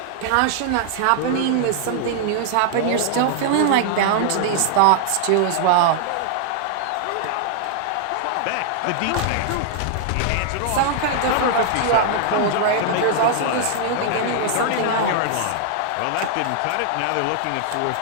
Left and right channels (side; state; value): both; different; correlation -0.01